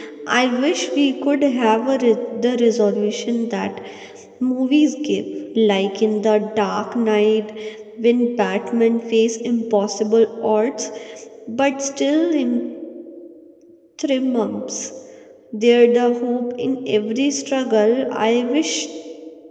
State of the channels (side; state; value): both; identical; correlation 1.00